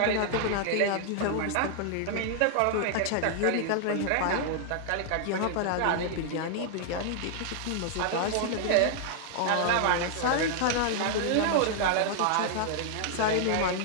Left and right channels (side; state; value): both; different; correlation 0.00